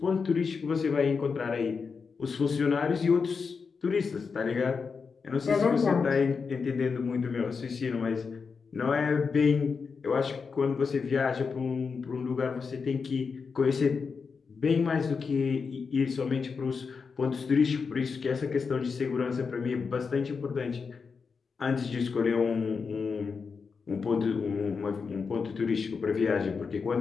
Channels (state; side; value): quieter; right; 5.3 dB